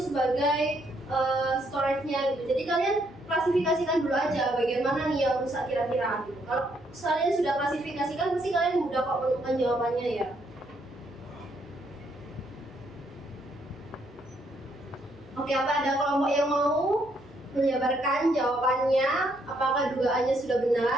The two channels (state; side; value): noise; left; hum, 26 dB below the sound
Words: sebagai storage-nya gitu. Jadi kalian klasifikasikan dulu aja bagaimana nih yang rusak kira-kira gitu. Kalau kalian sudah klasifikasikan, pasti kalian mudah kok menemukan jawabannya ya. Oke, apa ada kelompok yang mau menjabarkan jawabannya? Apakah dugaannya sudah